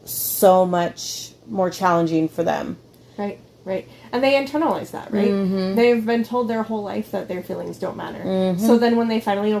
so much more challenging for them. Right. And they internalize that, right? Mm-hmm. They've been told their whole life that their feelings don't matter. Mm-hmm. So then when they finally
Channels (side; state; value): both; identical; correlation 1.00